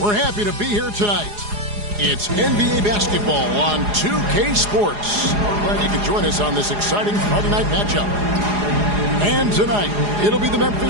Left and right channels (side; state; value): left; late; 4.8 ms